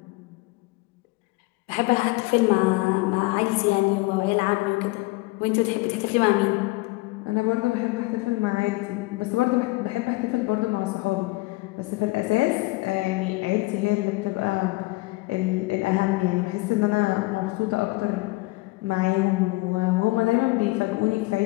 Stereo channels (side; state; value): right; quieter; 22.8 dB